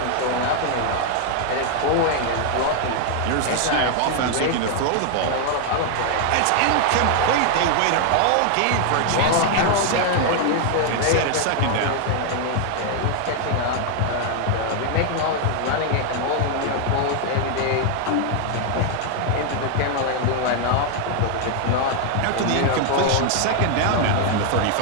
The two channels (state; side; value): different; both; correlation 0.00